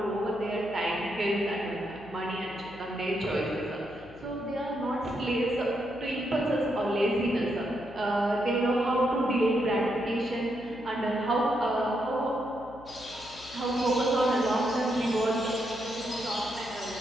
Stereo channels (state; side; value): noise; left; hum, 20 dB below the sound